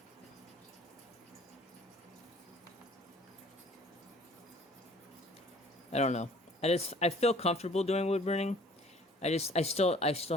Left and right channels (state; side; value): normal; both; correlation 0.53